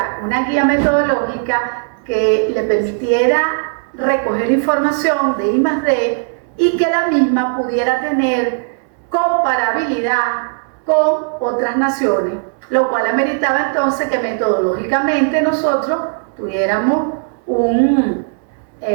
una guía metodológica que le permitiera recoger información de I+D y que la misma pudiera tener comparabilidad con otras naciones, lo cual ameritaba entonces que metodológicamente nosotros tuviéramos un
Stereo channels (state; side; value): silent; left; 68 dB below the other